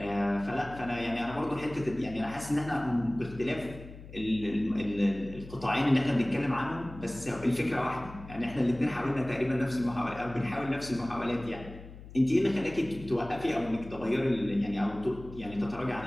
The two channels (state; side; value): noise; left; hum, 15 dB below the sound